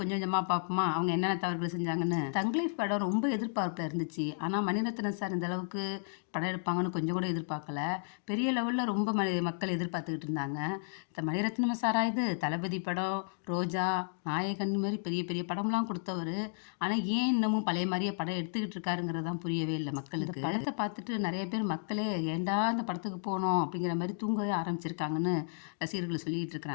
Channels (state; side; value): silent; right; digital silence